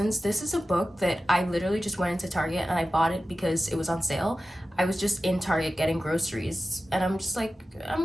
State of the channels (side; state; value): both; normal; correlation 0.94